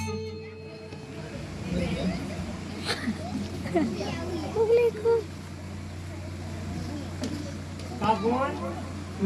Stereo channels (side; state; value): both; identical; correlation 1.00